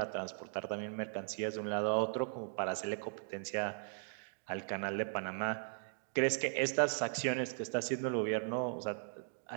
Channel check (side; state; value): left; silent; digital silence